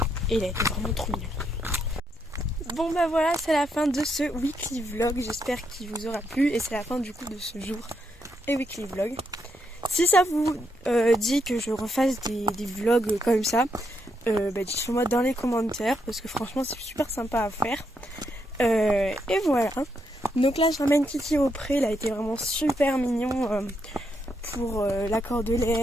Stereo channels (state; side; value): normal; both; correlation 0.79